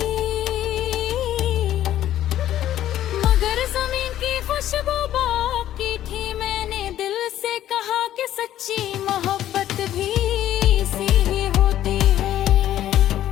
मगर जमीन की खुशबू बाकी थी। मैंने दिल से कहा कि सच्ची मोहब्बत भी सी ही होती है।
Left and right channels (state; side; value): quieter; right; 12.4 dB